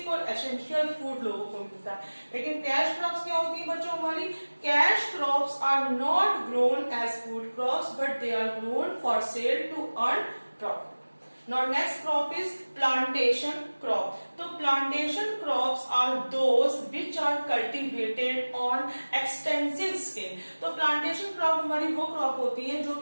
और एसेंशियल फूड लोगों को मिलता है. लेकिन कैश क्रॉप्स क्या होती है बच्चों हमारी, cash crops are not grown as food crops but they are grown for sale to earn profit. Now next crop is plantation crop. So plantation crops are those which are cultivated on extensive scale. तो plantation crop हमारी वो crop होती है जो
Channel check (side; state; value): both; inverted; correlation -1.00